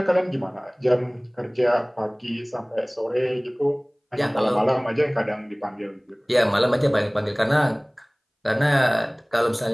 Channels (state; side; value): identical; both; correlation 1.00